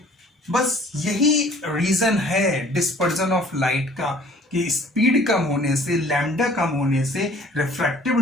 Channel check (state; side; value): normal; both; correlation 0.53